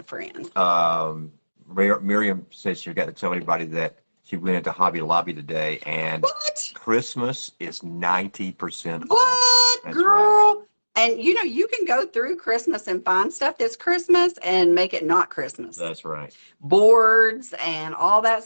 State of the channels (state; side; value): inverted; both; correlation -1.00